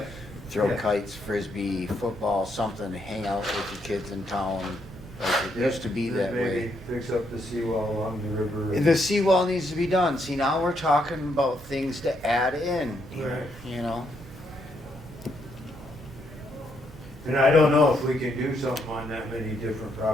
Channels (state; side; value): normal; both; correlation 0.76